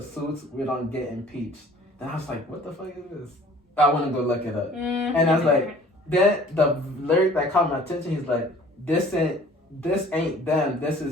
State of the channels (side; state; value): both; normal; correlation 0.51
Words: we don't get impeached." Then I was like, what the fuck is this? I want to go look it up. And I was like, then the lyric that caught my attention, he's like, this ain't them, this